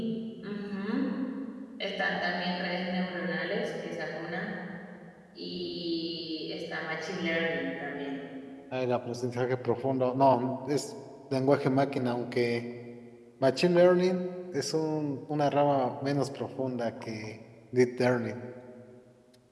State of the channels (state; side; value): identical; both; correlation 1.00